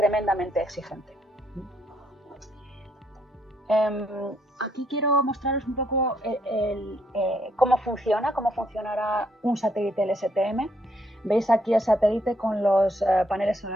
exigente. Aquí quiero mostraros un poco cómo funcionará un satélite LSTM. Veis aquí el satélite con los paneles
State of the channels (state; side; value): normal; both; correlation 0.72